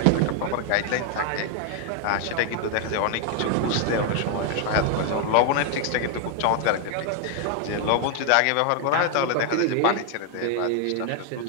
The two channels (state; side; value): different; both; correlation 0.01